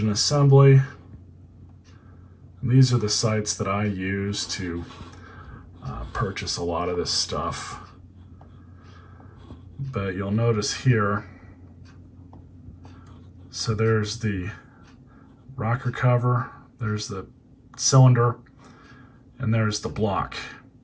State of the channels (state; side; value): identical; both; correlation 1.00